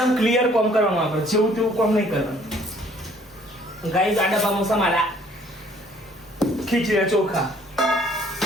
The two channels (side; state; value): both; normal; correlation 0.59